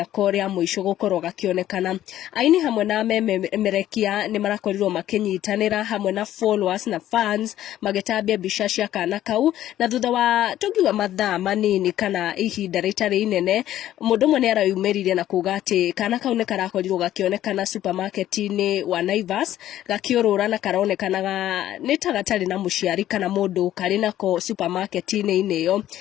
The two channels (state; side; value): quieter; right; 12.7 dB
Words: koria muico gukorwo gakionekana aini hamwe na memerekia ni marakorirwo makinyitanira hamwe na followers na fans magitambia bica cia kana kau na thutha wa tugiwa mathaa manini kana ihinda ritari inene mundu mwe ni arayumiririe na kuga ati kana kau ni karakorirwo gakionekana supermarket-ini wa Naivas gakiurura na karonekanaga ni tagatari na muciari kana mundu kari nako supermarket-ini ineyo